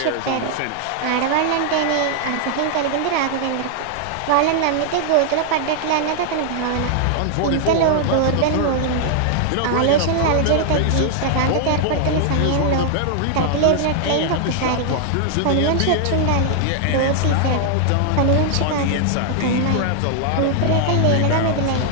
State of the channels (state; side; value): different; both; correlation 0.00